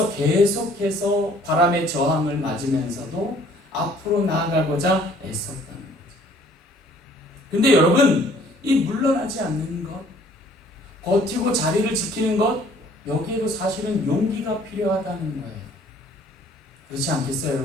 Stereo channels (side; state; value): both; normal; correlation 0.57